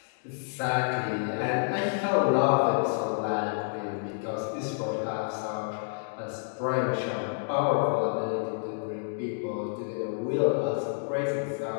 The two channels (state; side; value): silent; right; digital silence